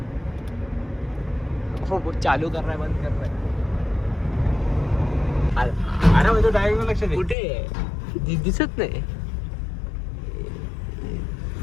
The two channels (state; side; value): drops out; right; at 7.4 s